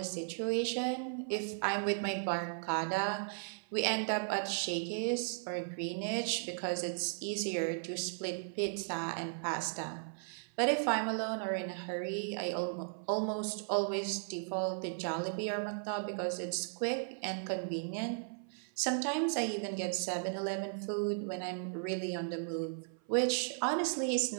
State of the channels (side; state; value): left; silent; 54 dB below the other